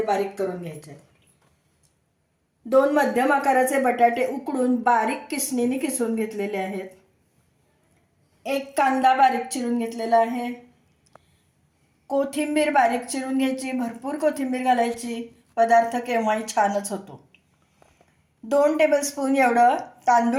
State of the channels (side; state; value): both; identical; correlation 1.00